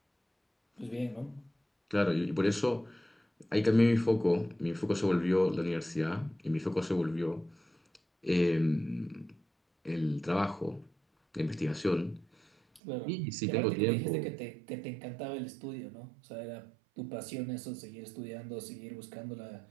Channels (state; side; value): drops out; left; at 12.8 s